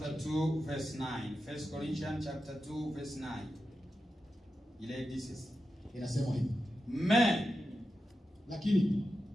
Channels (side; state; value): both; normal; correlation 0.91